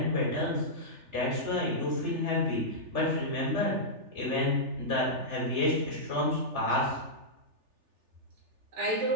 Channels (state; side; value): late; left; 3.4 ms